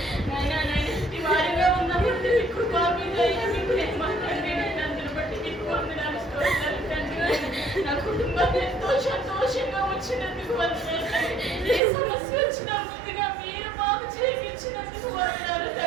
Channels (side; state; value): left; drops out; at 11.8 s